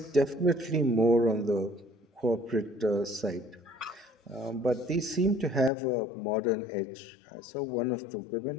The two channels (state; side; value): drops out; right; at 5.7 s